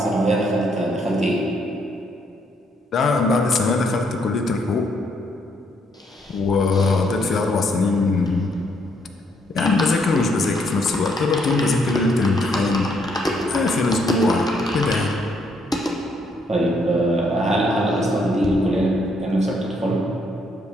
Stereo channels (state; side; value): normal; both; correlation 0.72